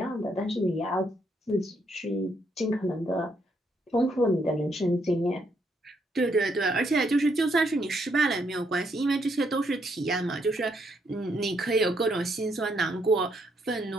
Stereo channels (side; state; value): both; normal; correlation 0.74